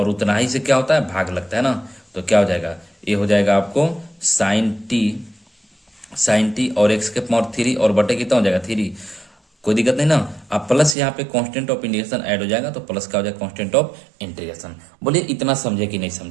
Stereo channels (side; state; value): left; drops out; at 11.0 s